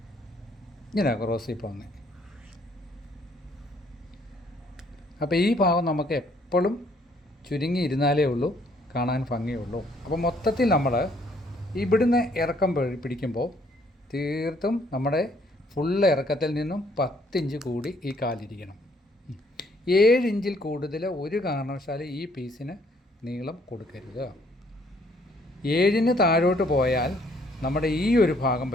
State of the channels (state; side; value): normal; both; correlation 0.65